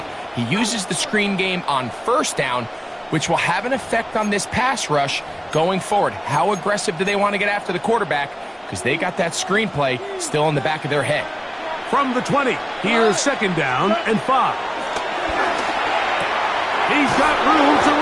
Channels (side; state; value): both; identical; correlation 1.00